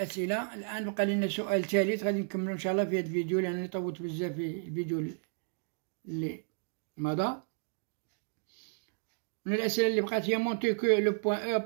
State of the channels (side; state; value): left; silent; digital silence